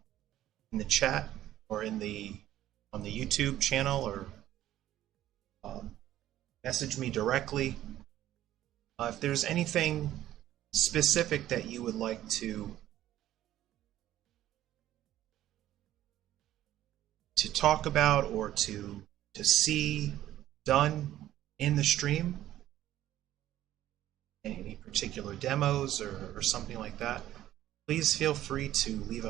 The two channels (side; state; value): left; quieter; 13.3 dB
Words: in the chat or on the YouTube channel, or message me directly. If there's anything specific that you would like to talk about or to see done in the stream, any particular demos or something like that, please feel free to leave a